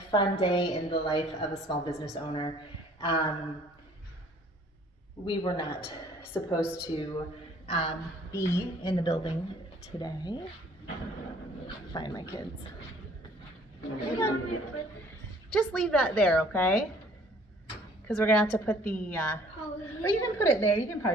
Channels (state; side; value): normal; both; correlation 0.57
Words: fun day in the life of a small business owner. We were not supposed to be in the building today. Find my kids. Just leave that there, okay? Because we're gonna have to put the, or you can put it there. You can